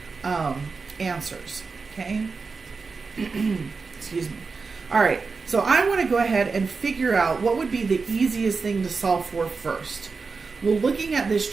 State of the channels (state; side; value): quieter; left; 4.6 dB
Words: answers. Okay, excuse me. All right, so I want to go ahead and figure out what would be the easiest thing to solve for first. Well, looking at this